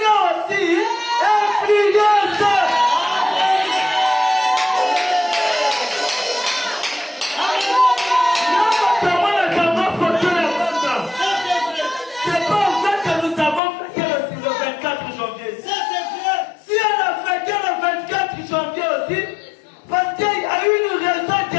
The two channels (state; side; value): drops out; right; at 13.6 s